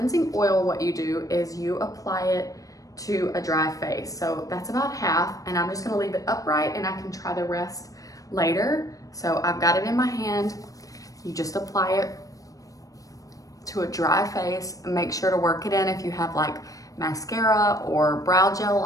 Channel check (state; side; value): late; right; 0.16 ms